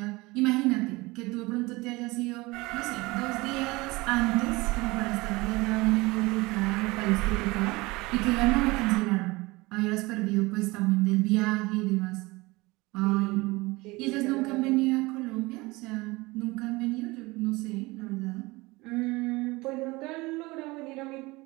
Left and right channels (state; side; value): quieter; left; 22.6 dB